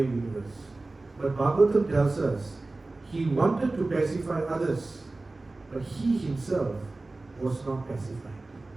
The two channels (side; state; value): left; quieter; 3.2 dB